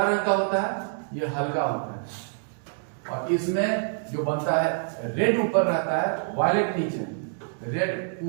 रंग का होता है, यह हल्का होता है। और इसमें जो बनता है रेड ऊपर रहता है, वायलेट नीचे, रेड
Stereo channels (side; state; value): left; silent; digital silence